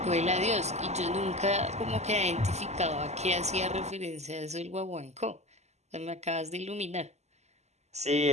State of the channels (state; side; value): late; left; 0.33 ms